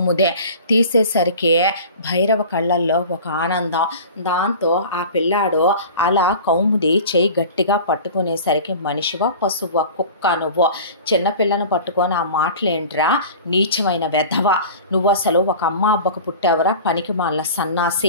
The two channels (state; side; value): inverted; both; correlation -0.38